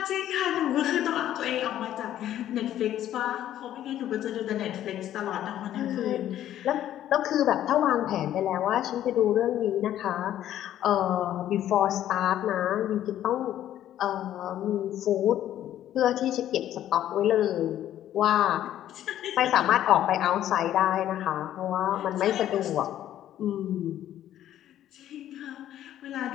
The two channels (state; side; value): quieter; right; 11.9 dB